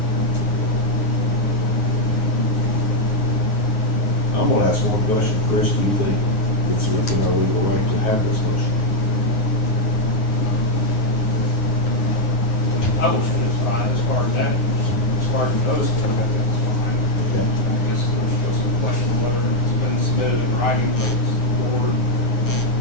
I'm gonna ask one question. Chris, do you think it's within our legal right to have this motion? publishing is fine as far as that, as far as the notice goes, I think it's fine. Okay. I guess there's still some question of whether it's been submitted in writing, but it's the board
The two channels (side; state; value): right; late; 9.1 ms